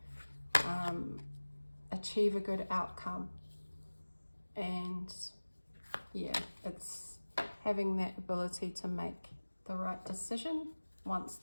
achieve a good outcome. And yeah, it's having that ability to make the right decision once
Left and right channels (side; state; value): both; inverted; correlation -1.00